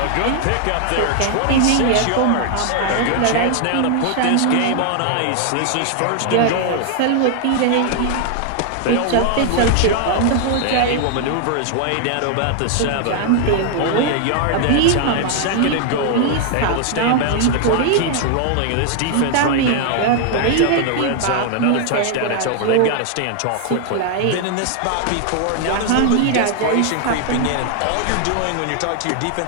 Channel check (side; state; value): both; different; correlation 0.00